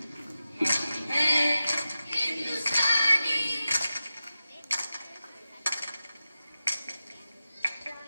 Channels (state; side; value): inverted; both; correlation -0.92